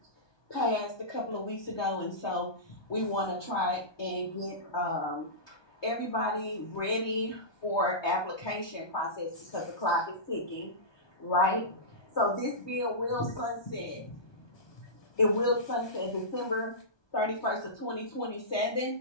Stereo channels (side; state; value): right; late; 1.2 ms